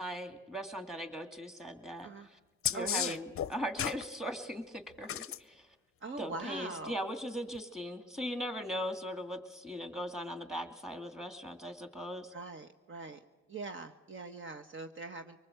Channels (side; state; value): both; normal; correlation 0.44